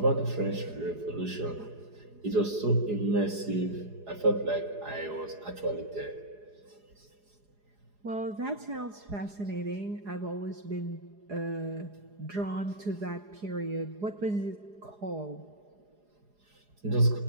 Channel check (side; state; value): left; late; 4.8 ms